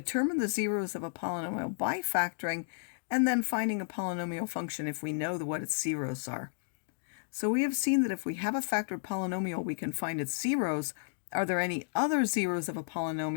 the zeros of a polynomial by factoring, and then finding a polynomial function if we know what its zeros are. So we have seen that if we have a factored polynomial, we can find its zeros. Are there any other zeros of a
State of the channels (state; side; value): silent; right; digital silence